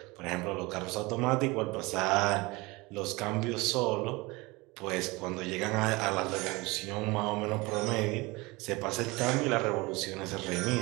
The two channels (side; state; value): left; quieter; 23.7 dB